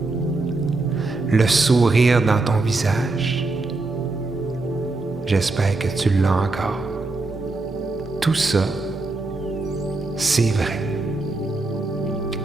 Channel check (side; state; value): left; quieter; 3.3 dB